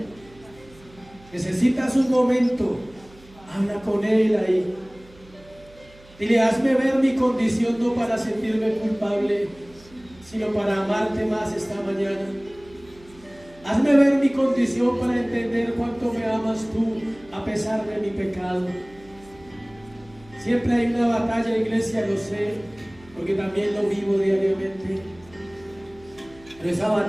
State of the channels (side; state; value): right; noise; hum, 25 dB below the sound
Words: Necesitas un momento, habla con Él ahí. Dile, hazme ver mi condición no para sentirme culpable, sino para amarte más esta mañana. Hazme ver mi condición para entender cuánto me amas tú a pesar de mi pecado. Siempre hay una batalla, iglesia, lo sé, porque también lo vivo diariamente. Pero esa